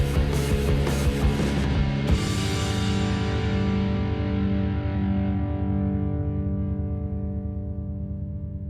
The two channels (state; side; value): identical; both; correlation 1.00